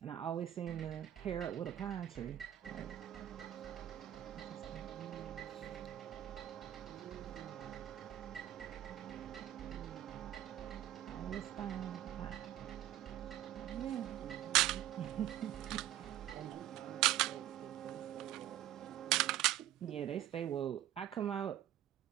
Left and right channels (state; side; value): quieter; left; 12.6 dB